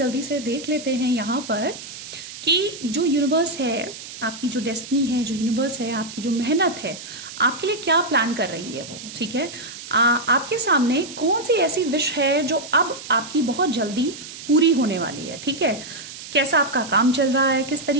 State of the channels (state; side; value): noise; right; hiss, 13 dB below the sound